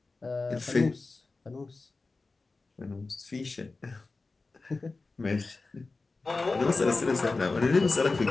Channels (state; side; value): quieter; right; 3.7 dB